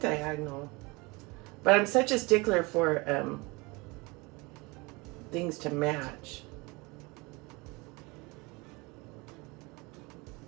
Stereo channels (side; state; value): left; quieter; 25.7 dB